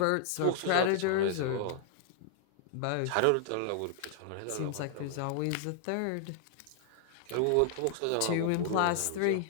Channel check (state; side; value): different; both; correlation -0.01